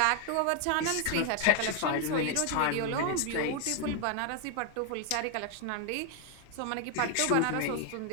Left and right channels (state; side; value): different; both; correlation 0.00